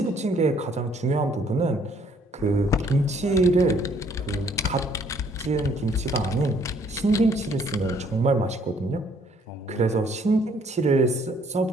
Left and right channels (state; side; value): normal; both; correlation 0.63